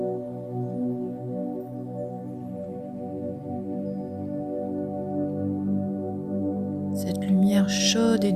Cette lumière chaude et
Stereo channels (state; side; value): identical; both; correlation 1.00